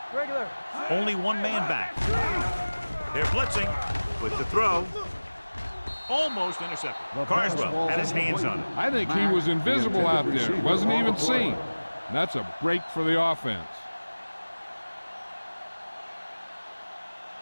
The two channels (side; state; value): both; inverted; correlation -1.00